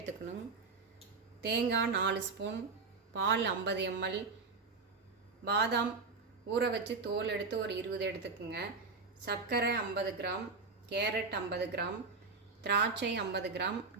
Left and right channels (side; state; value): left; quieter; 4.4 dB